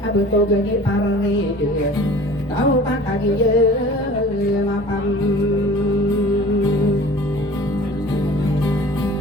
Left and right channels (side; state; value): both; normal; correlation 0.45